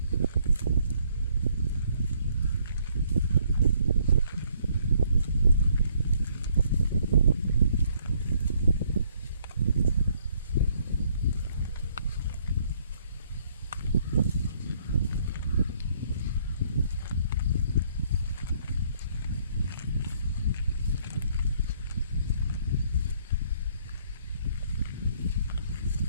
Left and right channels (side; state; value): both; inverted; correlation -0.66